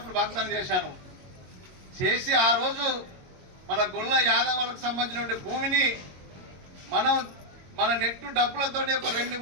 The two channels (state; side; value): late; left; 22 ms